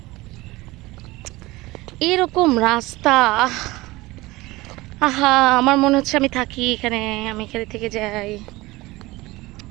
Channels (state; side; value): quieter; left; 20.4 dB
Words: এরকম রাস্তা, আহা আমার মনে হচ্ছে আমি থাকি এখানে, আমি এখানে থেকে যাই।